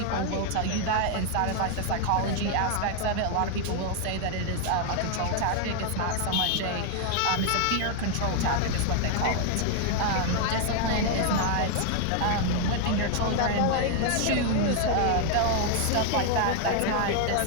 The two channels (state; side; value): different; both; correlation 0.00